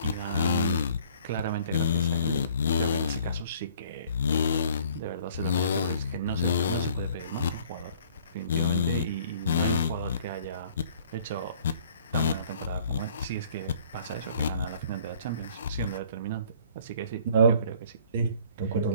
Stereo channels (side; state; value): both; inverted; correlation -0.55